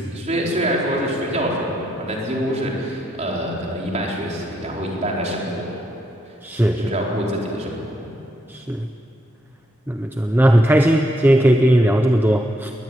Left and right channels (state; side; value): normal; both; correlation 0.77